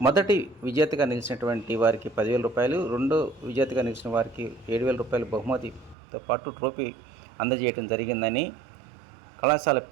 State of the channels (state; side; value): drops out; left; at 6.0 s